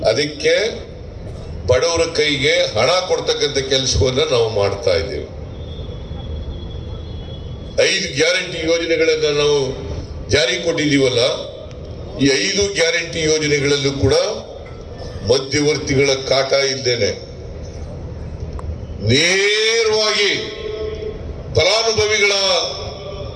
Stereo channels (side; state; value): both; identical; correlation 1.00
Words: ಅದಕ್ಕೆ ಬಡವರ ಕೈಗೆ ಹಣ ಕೊಡ್ತಕ್ಕಂಥ ಕೆಲಸವನ್ನ ನಾವು ಮಾಡ್ತಾ ಇದ್ದೇವೆ. 5 ಗ್ಯಾರಂಟಿ ಯೋಜನೆಗಳನ್ನ ನಾವು ಜಾರಿ ಕೊಟ್ಟಿದ್ದೀವಲ್ಲ, ಈ 5 ಗ್ಯಾರಂಟಿ ಯೋಜನೆಗಳಲ್ಲೂ ಕೂಡ ಮಧ್ಯವರ್ತಿಗಳ ಕಾಟ ಇದ್ದೇನೆ. ನೇರವಾಗಿ ಫಲಾನುಭವಿಗಳ